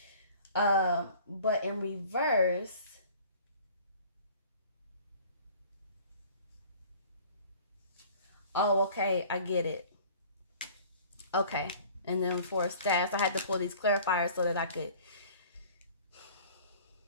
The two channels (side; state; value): both; inverted; correlation -0.48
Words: But in reverse, oh, okay, I get it. Okay, and then for Staffs, I had to pull these clarifiers so that I could.